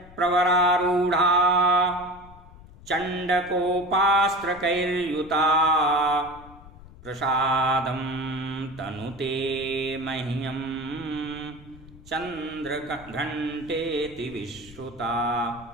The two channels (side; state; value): left; noise; rumble, 20 dB below the sound